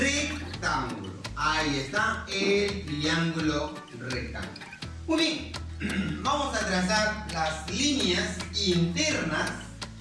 Ahí está el triángulo rectángulo. Muy bien. Vamos a trazar las líneas internas.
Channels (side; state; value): both; identical; correlation 1.00